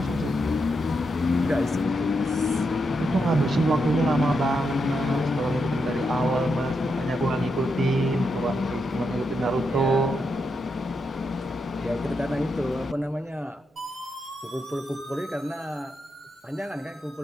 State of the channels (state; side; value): normal; both; correlation 0.83